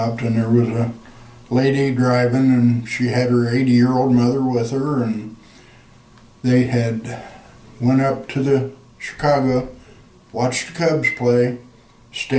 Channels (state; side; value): identical; both; correlation 1.00